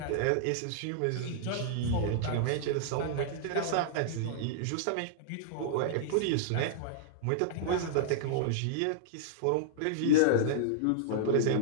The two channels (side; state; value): both; different; correlation -0.02